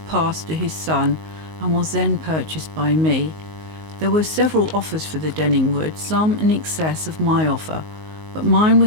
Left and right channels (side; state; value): left; late; 19 ms